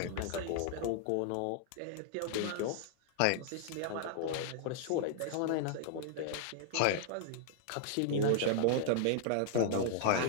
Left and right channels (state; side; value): different; both; correlation -0.01